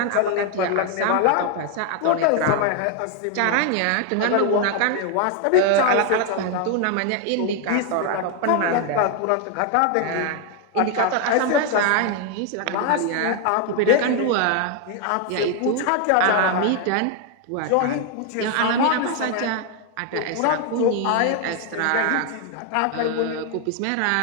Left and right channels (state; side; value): different; both; correlation 0.01